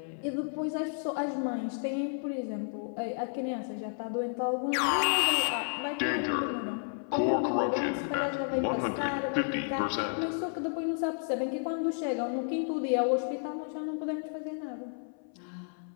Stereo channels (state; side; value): silent; right; 57 dB below the other